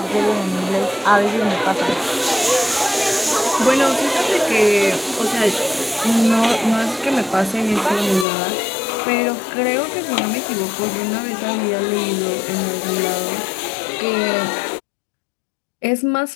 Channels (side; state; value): right; drops out; at 8.2 s